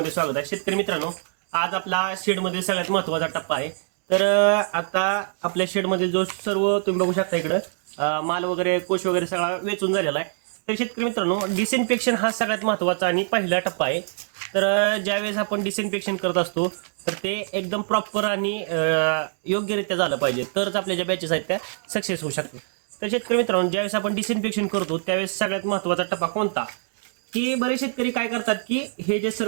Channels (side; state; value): left; silent; digital silence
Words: स्वागत आहे. शेतकरी मित्रांनो, आज आपला शेडमध्ये सगळ्यात महत्त्वाचा टप्पा आहे. तर आता आपल्या शेडमधील जो सर्व तुम्ही बघू शकता इकडं माल वगैरे कोश वगैरे सगळा वेचून झालेला आहे. तर शेतकरी मित्रांनो, डिसइन्फेक्शन हा सगळ्यात महत्त्वाचा आणि पहिला टप्पा आहे. तर ज्यावेळेस आपण डिसइन्फेक्शन करत असतो तर ते एकदम प्रॉपर आणि योग्यरित्या झालं पाहिजे, तरच आपल्या ज्या बॅचेस आहेत त्या सक्सेस होऊ शकतात. तर शेतकरी मित्रांनो, ज्यावेळेस आपण डिसइन्फेक्शन करतो त्यावेळेस सगळ्यात महत्त्वाचा टप्पा कोणता, की बरेच शेतकरी काय करतात की हे जे